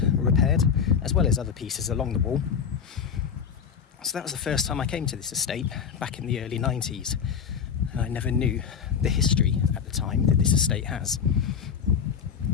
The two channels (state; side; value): quieter; right; 7.3 dB